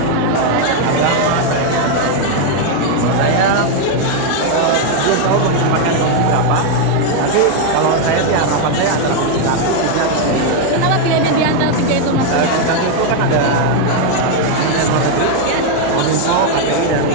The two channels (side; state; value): both; different; correlation 0.01